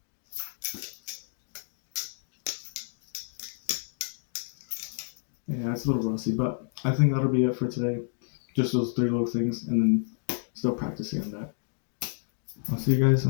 Yeah, it's a little rusty, but I think that'll be it for today. Just those 3 little things, and then still practicing on that. I'll see you guys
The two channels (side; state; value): right; silent; digital silence